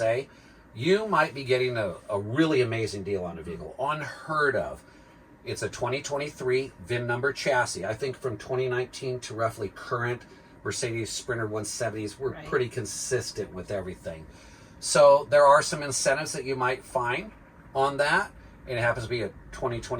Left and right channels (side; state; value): both; identical; correlation 1.00